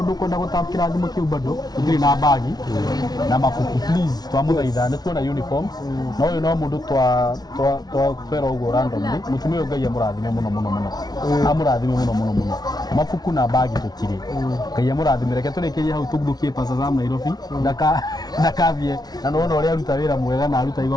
kwenda gutapkira thimu kiu bado tutiri na bagi na mafuku please twamuthaitha ni tuona uniforms na uyu no mundu twera uguo randomly mutumia uyu Ngai amurathime muno amurathime muno mafuku na bagi tutiri Ngai amurathime reke turikirie hau tuguthukie Pastor Sam Nairobi ndakavie na nona uria aruta wira mwega na aruta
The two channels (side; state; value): right; late; 0.19 ms